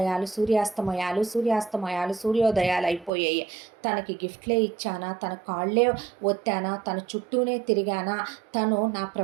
సూర్యోదయాలు అయిపోయాయి. తనకి గిఫ్ట్లే ఇచ్చానా, తన కాళ్ళే ఒత్తానా, తన చుట్టూనే తిరిగానా, తను నా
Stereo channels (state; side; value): drops out; left; at 3.1 s